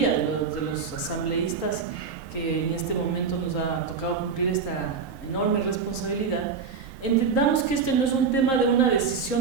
de los asambleístas que en este momento nos ha tocado cumplir esta enorme responsabilidad, entendamos que este no es un tema de una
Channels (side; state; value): left; quieter; 5.7 dB